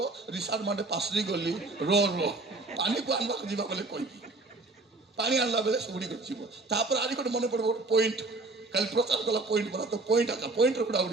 ରିସାର୍ଟ ମାଟେ ପାଶରି ଗଲି, ପାଣିକୁ ଆଣିବାକୁ ଯିବା ବୋଲେ କହିବି। ପାଣି ଆଣିଲା ବେଳେ ସୁଡ଼ି ଯିବ। ତାପରେ ଆରି ଗୋଟେ ମନେ ପଡ଼ିବ ଗୋଟେ ପଏଣ୍ଟ, କାଲି ପ୍ରଚାର କଲା ପଏଣ୍ଟ ପରା, ତ ପଏଣ୍ଟର ହୁଡ଼ା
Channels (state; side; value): quieter; left; 3.3 dB